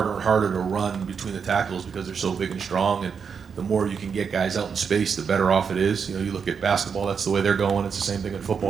and harder to run between the tackles because they're so big and strong, and the more you can get guys out in space, the better off it is. You look at basketball, that's the way they're going. It's the same thing in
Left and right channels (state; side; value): quieter; left; 6.3 dB